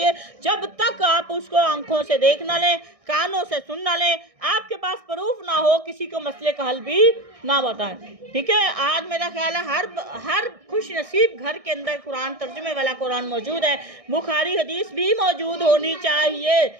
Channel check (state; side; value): late; left; 1.6 ms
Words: जब तक आप उसको आंखों से देख ना लें, कानों से सुन ना लें, आपके पास प्रूफ ना हो, किसी को मसले का हल भी ना बताएं। ठीक है, आज मेरा ख्याल है हर खुश नसीब घर के अंदर कुरान तर्जुमे वाला कुरान मौजूद है। बुखारी हदीस भी मौजूद होनी चाहिए,